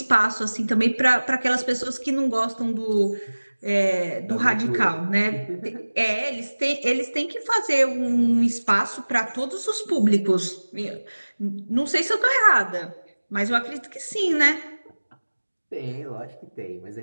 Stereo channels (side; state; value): both; inverted; correlation -1.00